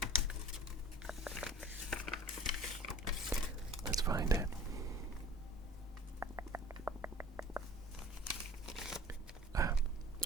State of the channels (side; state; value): both; normal; correlation 0.45